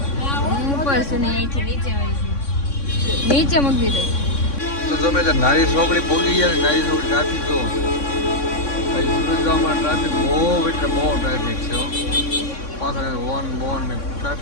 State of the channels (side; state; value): right; late; 3.6 ms